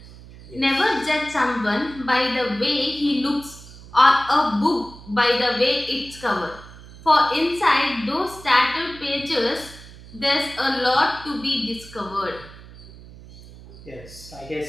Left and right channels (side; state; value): right; noise; hum, 18 dB below the sound